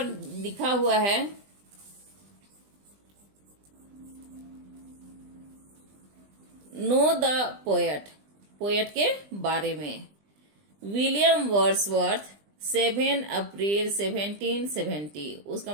लिखा हुआ है, नो द पोएट, पोएट के बारे में। विलियम वर्ड्सवर्थ 7 अप्रैल 1770, उसका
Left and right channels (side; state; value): left; late; 20 ms